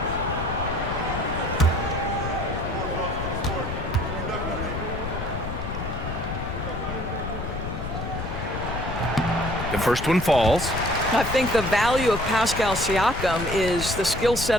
The first one falls. I think the value of Pascal Siakam is the skill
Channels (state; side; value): noise; left; rumble, 6 dB below the sound